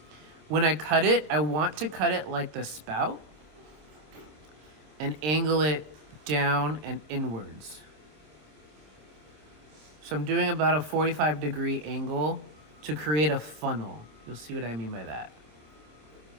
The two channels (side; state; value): left; late; 26 ms